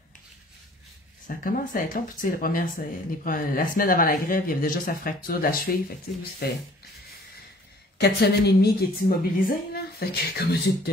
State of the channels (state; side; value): normal; both; correlation 0.54